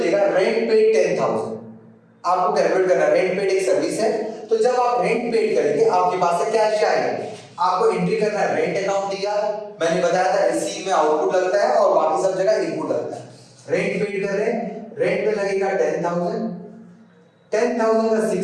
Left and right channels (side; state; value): both; identical; correlation 1.00